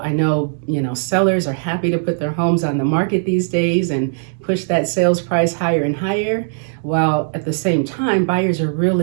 I know, sellers are happy to put their homes on the market these days and push that sales price higher and higher, while at the same time, buyers are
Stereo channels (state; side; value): silent; left; digital silence